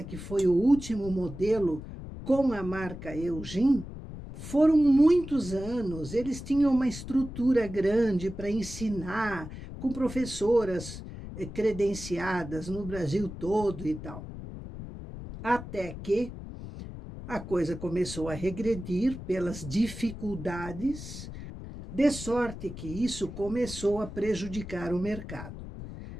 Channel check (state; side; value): noise; left; rumble, 11 dB below the sound